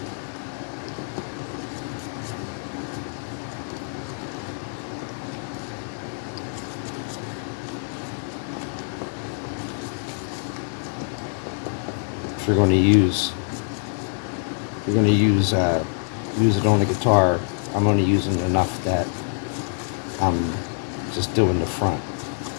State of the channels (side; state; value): right; silent; digital silence